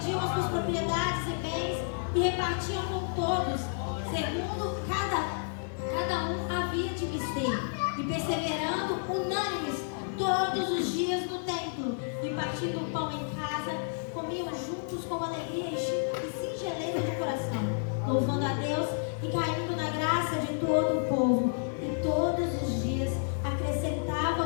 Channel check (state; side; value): silent; right; 57 dB below the other